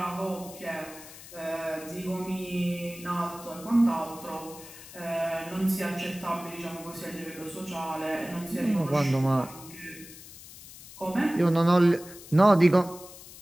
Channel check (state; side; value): noise; left; hiss, 17 dB below the sound